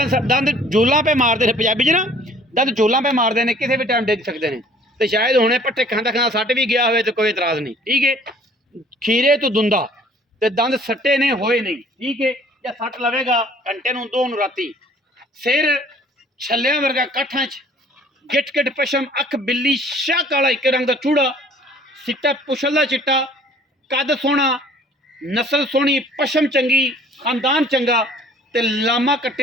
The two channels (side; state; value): both; normal; correlation 0.54